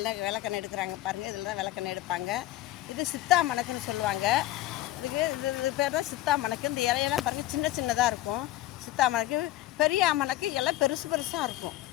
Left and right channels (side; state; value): right; quieter; 15.6 dB